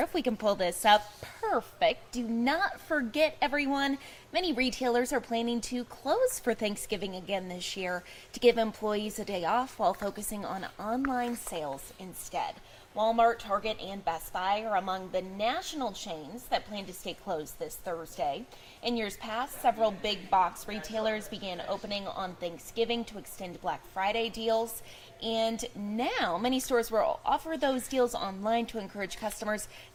if we can pull this up, perfect. Do not forget, everyone, many retailers are planning to close for Thanksgiving again this year to give employees a day off while focusing on online sales instead. Walmart, Target, and Best Buy are among the national chains that plan to stay closed this Thursday. In years past, several big box retailers began opening on Thanksgiving to extend Black Friday deals. And now many stores will offer those deals online to encourage customers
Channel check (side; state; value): both; identical; correlation 1.00